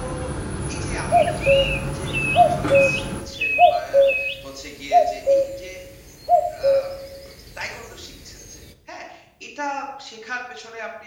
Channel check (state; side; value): identical; both; correlation 1.00